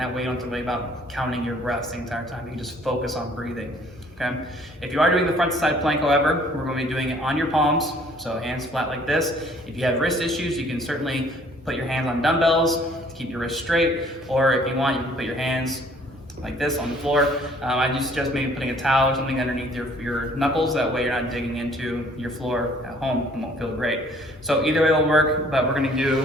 way you don't have to worry about counting your breaths the entire time. You can just focus on breathing. Okay. If you are doing the front to side plank, however, we're going to be doing it on your palms, so hands flat like this. If you have wrist issues, you can certainly put your hands on dumbbells to keep your wrists straight, or if you want, you can put your hands like this on the floor. I do suggest maybe putting a towel or something underneath your knuckles. That way you're not digging into your floor at home. It won't feel great. So either way will work, but we're going to do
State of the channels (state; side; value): normal; both; correlation 0.58